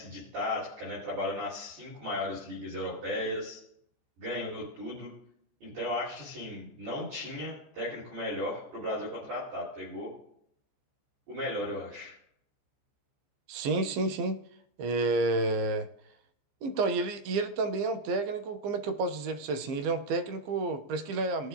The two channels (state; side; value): late; left; 15 ms